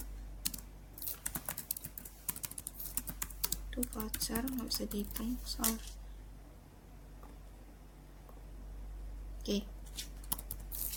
Itu voucher nggak bisa dihitung soal. Oke.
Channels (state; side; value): identical; both; correlation 1.00